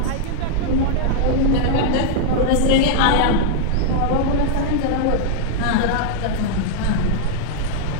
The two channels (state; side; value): different; both; correlation -0.01